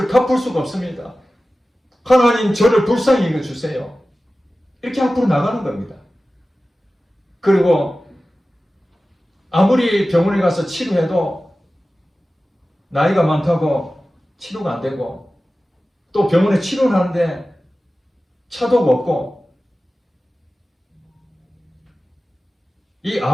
갚을 수가 없습니다. 하나님, 저를 불쌍히 여겨주세요. 이렇게 앞으로 나가는 겁니다. 그리고 아무리 병원에 가서 치료해도 나이가 많다고 치료가 안 되고 또 병원에 치료를 하는데 차도가 없고 이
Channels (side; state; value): both; normal; correlation 0.95